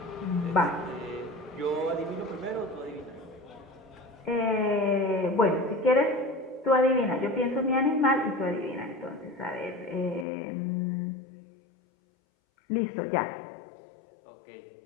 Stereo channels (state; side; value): drops out; right; at 10.2 s